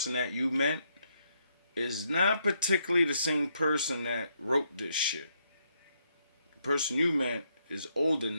that you meant is not particularly the same person that wrote this shit. The person you meant is older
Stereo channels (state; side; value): inverted; both; correlation -0.76